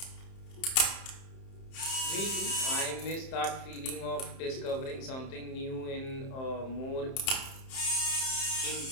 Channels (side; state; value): right; late; 31 ms